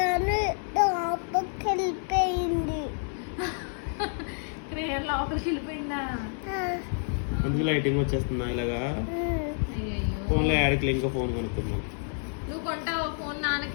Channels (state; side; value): silent; right; 59 dB below the other